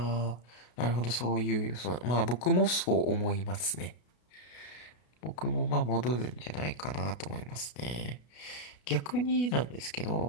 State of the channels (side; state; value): right; late; 33 ms